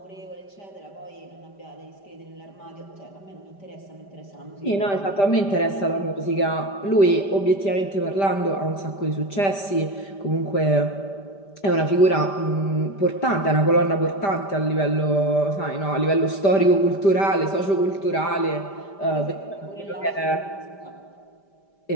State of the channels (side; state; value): right; late; 5.1 ms